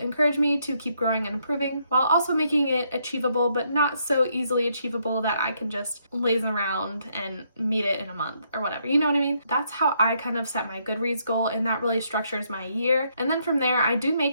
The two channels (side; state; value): both; inverted; correlation -0.74